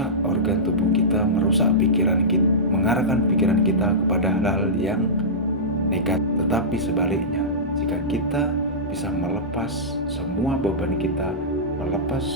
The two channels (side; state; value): both; normal; correlation -0.16